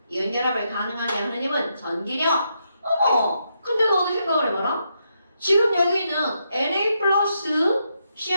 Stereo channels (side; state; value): both; inverted; correlation -0.81